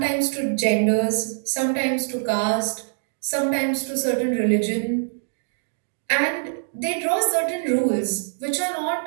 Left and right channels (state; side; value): silent; left; digital silence